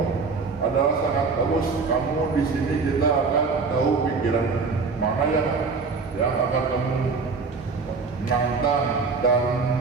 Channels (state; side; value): quieter; left; 4.6 dB